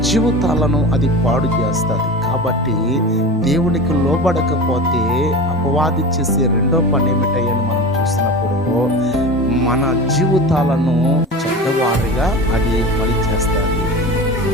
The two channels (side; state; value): both; normal; correlation 0.30